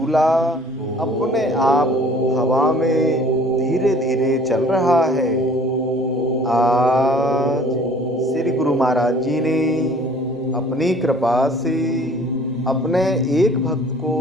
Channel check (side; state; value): both; normal; correlation 0.52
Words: अपने आप हवा में धीरे धीरे चल रहा है। आज श्री गुरु महाराज जी ने अपनी कृपा से अपने एक भक्त को